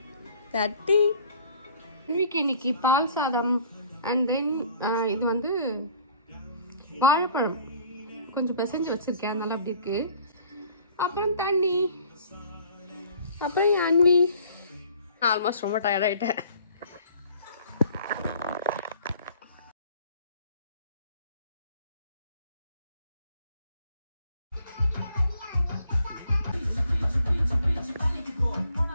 தட்டி இன்னைக்கு பால் சாதம் அண்ட் தென் இது வந்து வாழைப்பழம் கொஞ்சம் பிசைஞ்சு வச்சிருக்கேன், அதனால அப்படி இருக்கு. அப்புறம் தண்ணி, அப்புறம் அன்வி. ஆல்மோஸ்ட் ரொம்ப டயர்ட் ஆயிட்டேன்.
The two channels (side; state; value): both; inverted; correlation -0.55